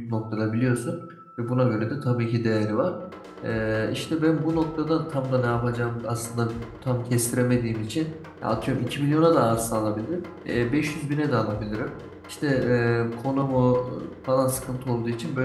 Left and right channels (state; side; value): identical; both; correlation 1.00